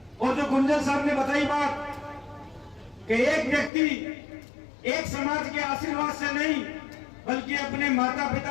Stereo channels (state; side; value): drops out; right; at 3.7 s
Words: और जो गुंजल साहब ने बताई बात कि एक व्यक्ति एक समाज के आशीर्वाद से नहीं बल्कि अपने माता